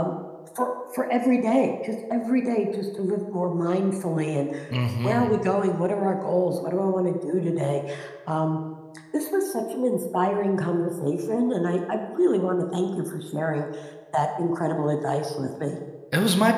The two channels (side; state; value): both; identical; correlation 1.00